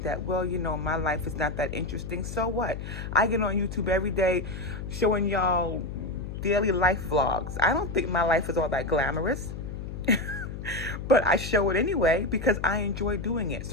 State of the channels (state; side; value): noise; left; hum, 8 dB below the sound